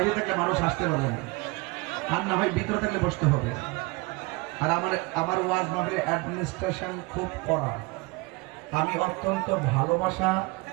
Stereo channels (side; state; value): left; quieter; 25.3 dB